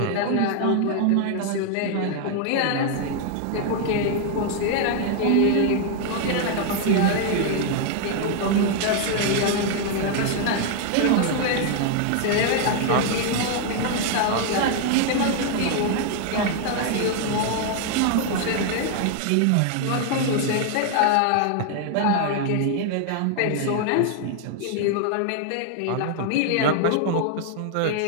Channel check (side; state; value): both; different; correlation 0.00